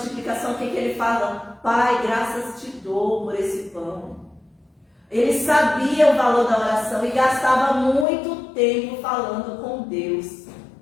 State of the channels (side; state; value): right; drops out; at 8.1 s